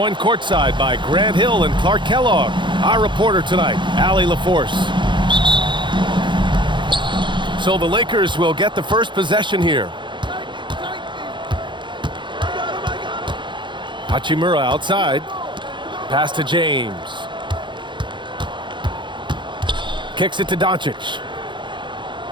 courtside by Grant Hill and Clark Kellogg. Our reporter tonight, Allie LaForce. So the Lakers will get the first possession here. Hachimura outside. Pass to James. Kicks it to Doncic.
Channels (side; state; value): left; late; 0.23 ms